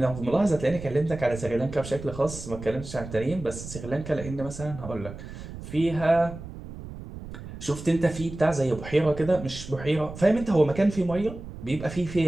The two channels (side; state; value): right; noise; rumble, 12 dB below the sound